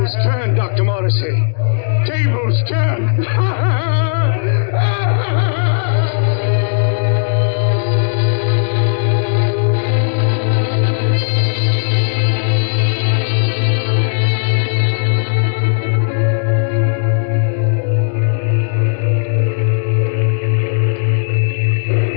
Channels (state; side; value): silent; right; digital silence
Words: turn, Dr. Morrissey. Tables turn.